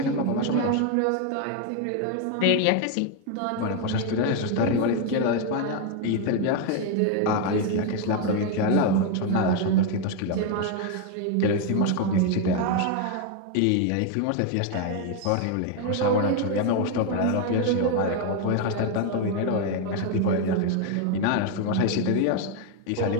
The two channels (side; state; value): both; different; correlation 0.01